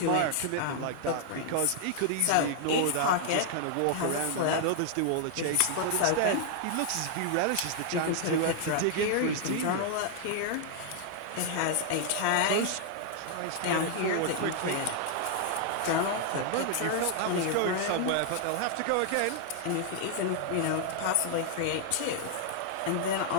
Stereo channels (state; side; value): different; both; correlation 0.00